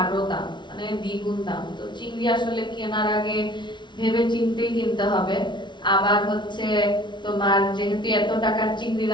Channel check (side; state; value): right; late; 0.23 ms